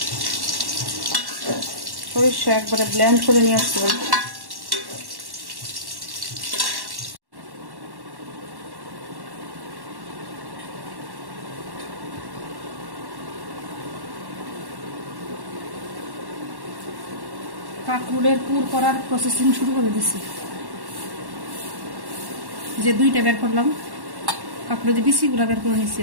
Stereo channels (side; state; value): left; late; 1.1 ms